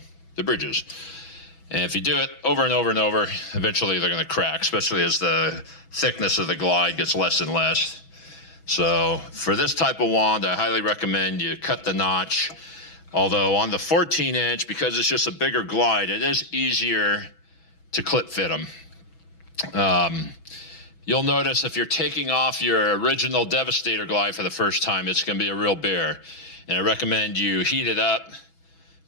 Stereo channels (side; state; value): right; late; 6.1 ms